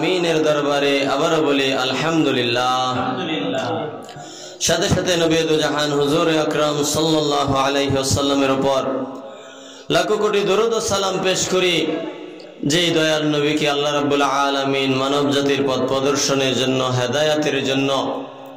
দরবারে আবারও বলি আলহামদুলিল্লাহ। সাথে সাথে নবী দু জাহান হুজুর আকরাম সাল্লাল্লাহু আলাইহি ওয়াসাল্লামের উপর লাখো কোটি দরুদ ও সালাম পেশ করি যে দয়াল নবীকে আল্লাহ রাব্বুল আলামিন মানব জাতির পথ প্রদর্শনের জন্য, হেদায়েতের জন্য,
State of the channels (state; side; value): identical; both; correlation 1.00